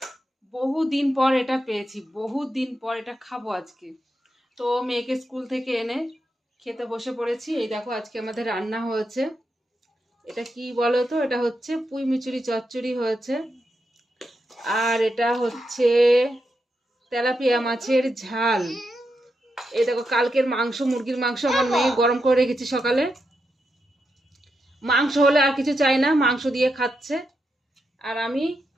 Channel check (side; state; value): both; normal; correlation 0.85